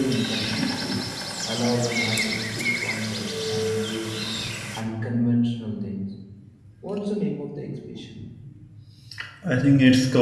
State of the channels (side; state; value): both; identical; correlation 1.00